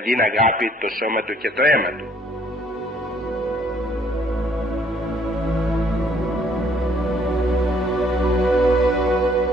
αγάπη το σώμα του και το αίμα του.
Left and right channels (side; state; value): both; normal; correlation 0.63